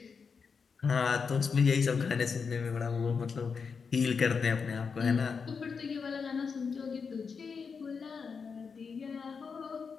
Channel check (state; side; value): quieter; right; 5.6 dB